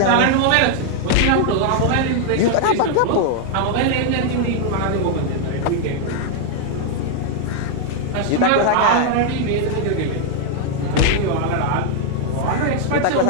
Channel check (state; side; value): different; both; correlation 0.00